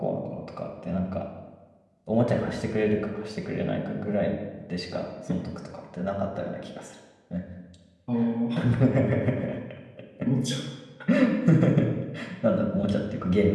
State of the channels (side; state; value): both; identical; correlation 1.00